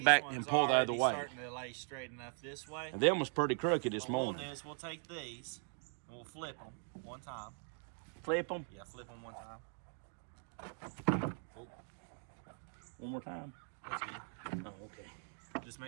back ones and pull the other already way. Starting to lay straight enough this way. And them was pretty crooked this What we'll morning. do is we'll take these and we'll flip them one time. Flip them Yeah, flip them one time. one more time. That's good. Oh, okay. Just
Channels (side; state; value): left; silent; 51 dB below the other